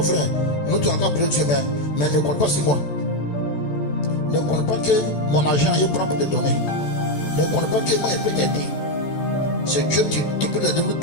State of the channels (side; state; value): right; late; 14 ms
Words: frère, nous tu as encore prié Dieu, mais ne compte pas sur moi. Ne compte pas que mon argent est prend pour te donner. Ne compte pas que moi je peux t'aider. C'est Dieu qui peut aider nous